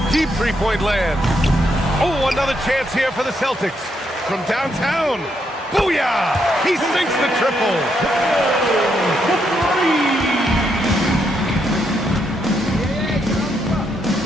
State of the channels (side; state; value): both; normal; correlation 0.78